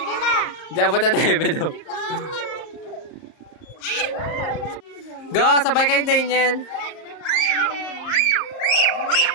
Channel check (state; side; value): late; right; 38 ms